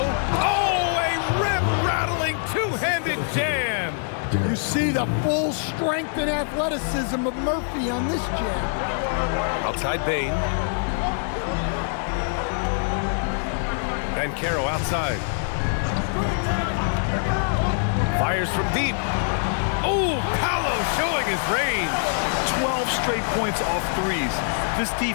Oh, a rip-rattling two-handed jam. You see the full strength and athleticism of Murphy on this jam. Outside Bane. Banchero outside. Fires from deep. Oh, Paolo showing his range. 12 straight points off 3s. This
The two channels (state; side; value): silent; right; 60 dB below the other